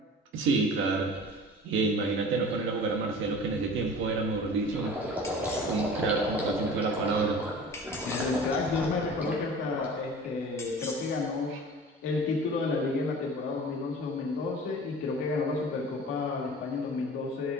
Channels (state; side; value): normal; both; correlation 0.41